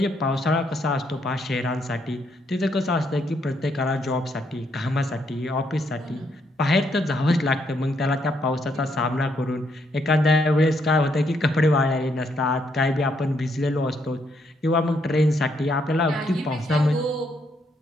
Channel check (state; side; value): normal; both; correlation 0.74